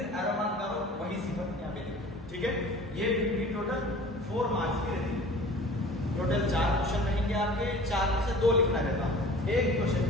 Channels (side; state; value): both; normal; correlation 0.43